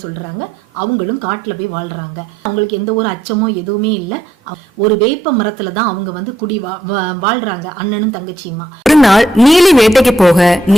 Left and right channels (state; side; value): normal; both; correlation 0.75